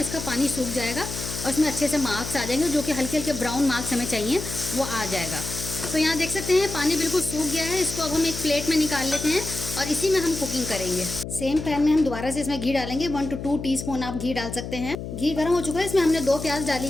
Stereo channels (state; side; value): noise; left; hum, 8 dB below the sound